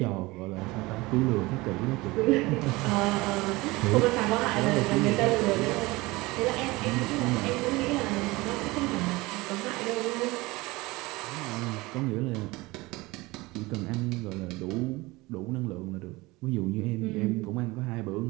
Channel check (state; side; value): quieter; left; 21.7 dB